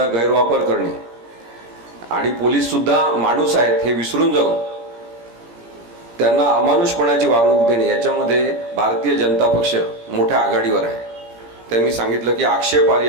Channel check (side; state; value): left; late; 17 ms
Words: गैरवापर करणे आणि पोलीस सुद्धा माणूस आहेत हे विसरून जाऊन त्यांना अमानुषपणाची वागणूक देणे, याच्यामध्ये भारतीय जनता पक्ष मोठ्या आघाडीवर आहे. त्यांनी सांगितलं की